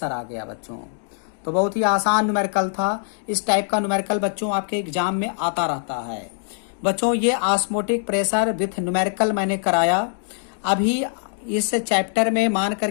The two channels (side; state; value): right; silent; digital silence